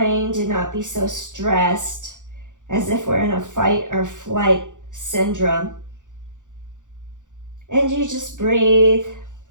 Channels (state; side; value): late; left; 0.87 ms